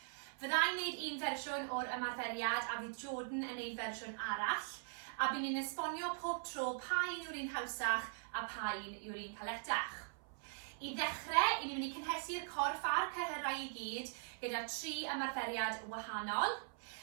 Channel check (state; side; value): silent; left; 50 dB below the other